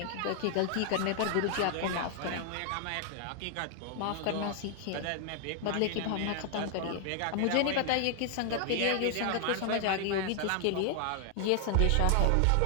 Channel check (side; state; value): both; different; correlation 0.00